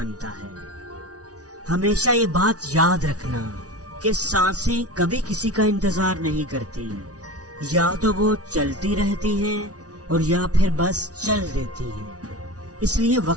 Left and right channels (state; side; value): late; left; 0.68 ms